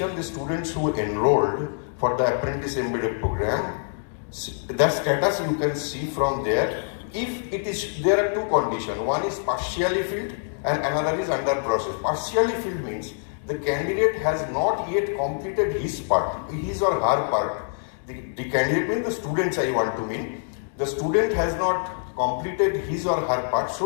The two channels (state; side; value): silent; right; digital silence